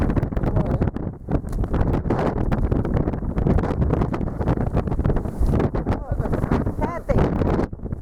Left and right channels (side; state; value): both; identical; correlation 1.00